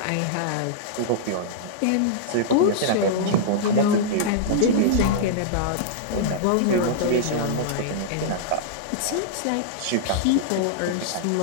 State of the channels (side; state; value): both; different; correlation -0.02